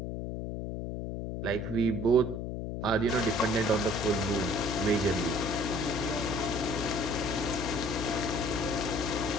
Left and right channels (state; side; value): noise; left; hum, 4 dB below the sound